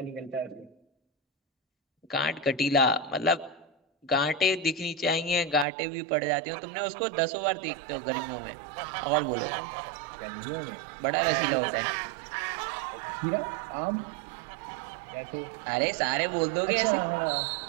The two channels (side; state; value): left; drops out; at 5.7 s